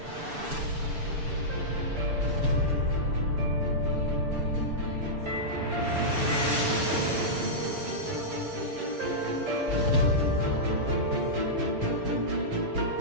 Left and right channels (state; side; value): late; left; 6.9 ms